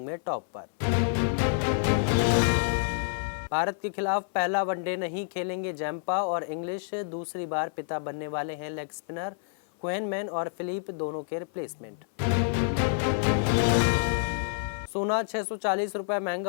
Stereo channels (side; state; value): right; silent; 56 dB below the other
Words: में टॉप पर। भारत के खिलाफ पहला वनडे नहीं खेलेंगे जैम्पा और इंग्लिश। दूसरी बार पिता बनने वाले हैं लेग स्पिनर। क्वेनमैन और फिलिप दोनों के रिप्लेसमेंट। सोना 640 रुपए